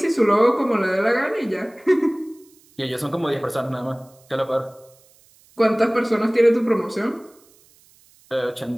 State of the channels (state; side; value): noise; right; hiss, 30 dB below the sound